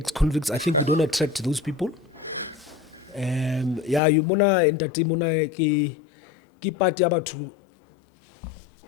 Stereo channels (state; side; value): drops out; right; at 4.0 s